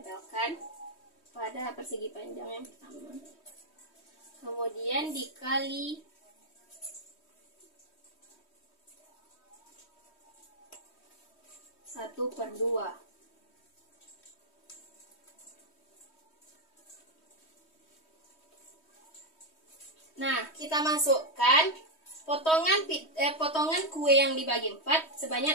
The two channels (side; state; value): right; late; 3.1 ms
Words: pada persegi panjang yang pertama. Kemudian dikali 1/2. Nah, kita masukkan potongan kue yang dibagi 4